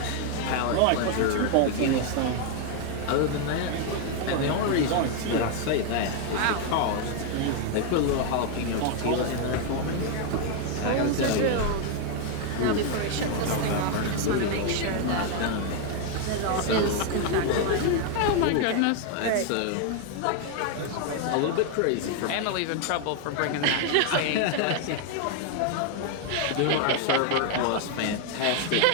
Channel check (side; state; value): both; different; correlation 0.01